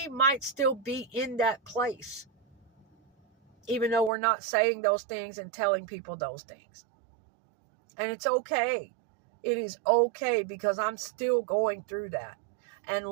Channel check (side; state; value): left; drops out; at 4.1 s